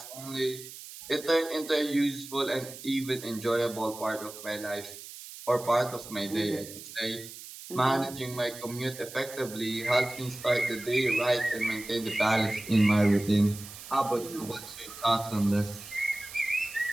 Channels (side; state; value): right; noise; hiss, 14 dB below the sound